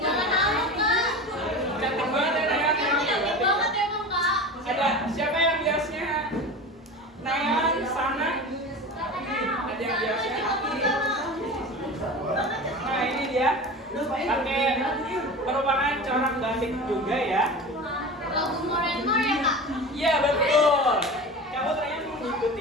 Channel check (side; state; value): both; normal; correlation 0.31